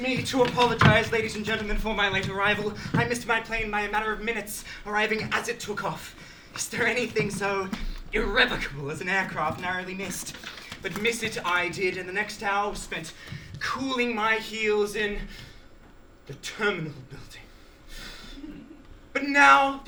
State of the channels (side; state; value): both; identical; correlation 1.00